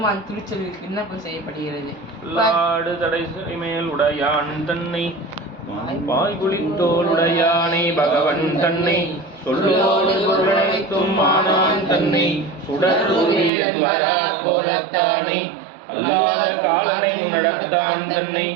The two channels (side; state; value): left; drops out; at 13.5 s